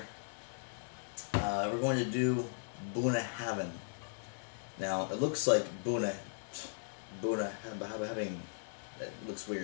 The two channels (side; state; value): right; silent; digital silence